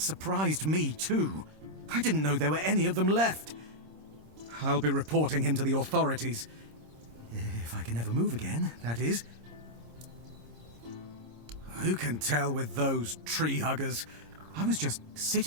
me, too. I didn't know there were any of them left. I'll be reporting him to the authorities. If I can ever move again, that is. Who can tell with those tree huggers? I was just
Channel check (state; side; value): late; left; 26 ms